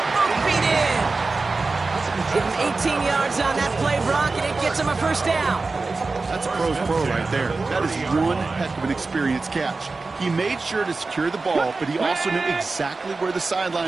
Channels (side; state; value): left; quieter; 3.8 dB